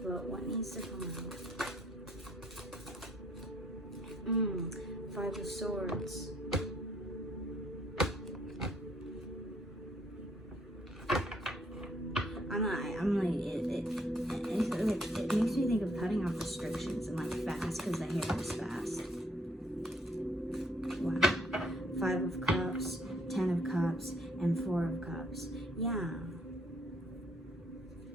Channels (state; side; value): normal; both; correlation 0.67